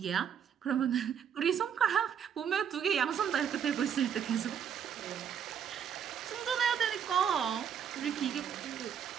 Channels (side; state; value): left; quieter; 8.1 dB